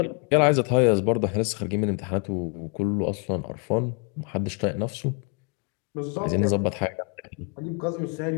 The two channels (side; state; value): right; quieter; 35.2 dB